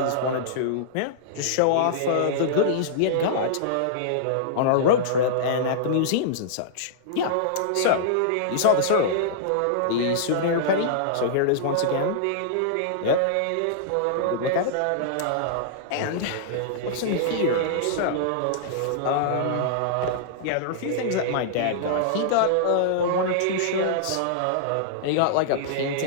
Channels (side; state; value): both; different; correlation -0.02